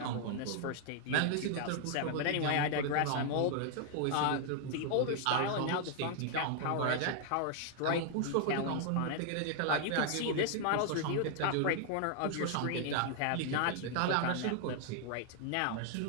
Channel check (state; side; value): different; both; correlation 0.00